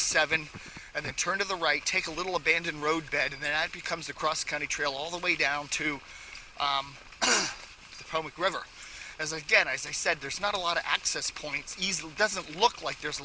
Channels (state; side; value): identical; both; correlation 1.00